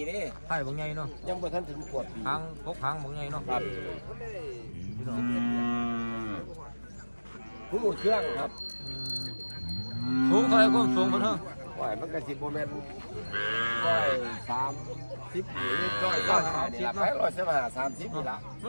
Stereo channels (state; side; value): inverted; both; correlation -1.00